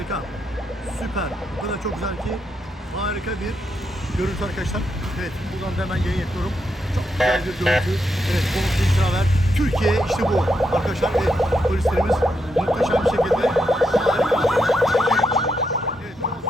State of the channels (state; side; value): normal; both; correlation 0.81